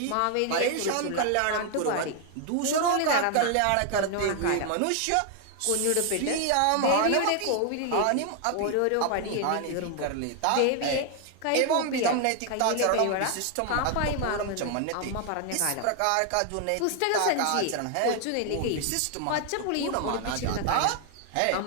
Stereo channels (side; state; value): both; different; correlation 0.00